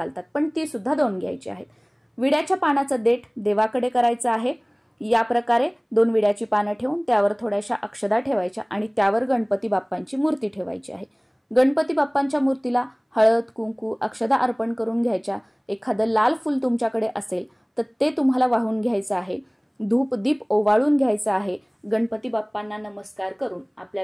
पण ती सुद्धा 2 घ्यायची आहेत। विड्याच्या पानाचं देठ देवाकडे करायचं आहे। या प्रकारे 2 विड्याची पानं ठेवून त्यावर थोड्याशा अक्षदा ठेवायच्या आणि त्यावर गणपती बाप्पांची मूर्ती ठेवायची आहे। गणपती बाप्पांच्या मूर्तीला हळद, कुंकू, अक्षदा अर्पण करून घ्यायच्या। एखादं लाल फूल तुमच्याकडे असेल तर ते तुम्हाला वाहून घ्यायचं आहे। धूप दीप ओवाळून घ्यायचा आहे. गणपती बाप्पांना नमस्कार करून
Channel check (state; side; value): identical; both; correlation 1.00